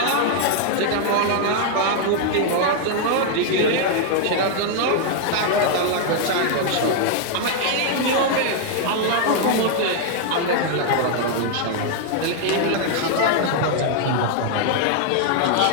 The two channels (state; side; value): different; both; correlation 0.00